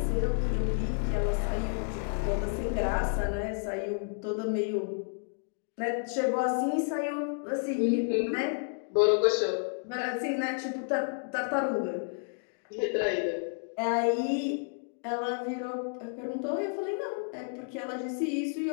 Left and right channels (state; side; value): silent; right; 57 dB below the other